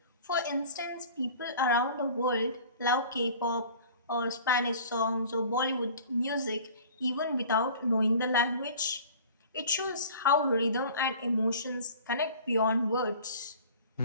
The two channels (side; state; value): both; inverted; correlation -0.45